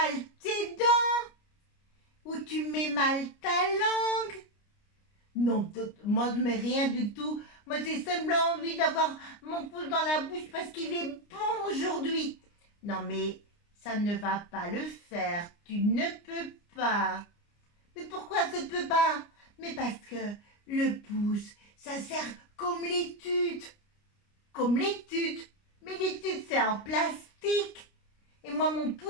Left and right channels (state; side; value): late; right; 29 ms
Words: tes dents. Ou tu mets mal ta langue. Non, moi je mets rien du tout. Moi j'ai simplement envie d'avoir mon pouce dans la bouche parce qu'il est bon aujourd'hui. Non mais ça ne va pas le faire. Tu ne peux pas. Mais pourquoi ça ne peut pas? Mais parce que le pouce, ça sert comme l'étude. Comme l'étude. Mais l'étude c'est en plastique. Et moi mon